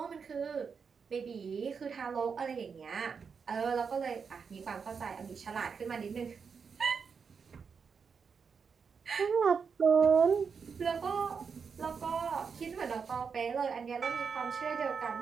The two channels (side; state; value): left; quieter; 5.9 dB